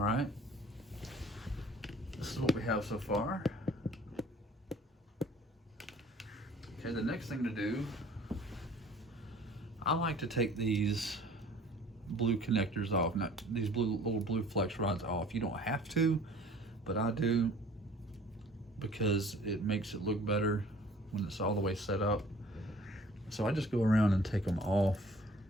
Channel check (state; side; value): normal; both; correlation 0.51